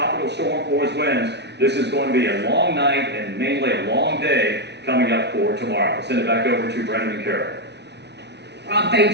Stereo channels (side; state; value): left; late; 0.50 ms